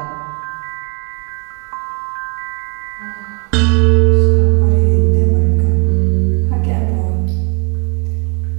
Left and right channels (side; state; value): left; quieter; 33.7 dB